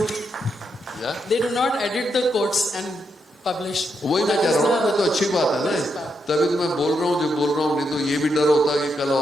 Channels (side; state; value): both; normal; correlation 0.81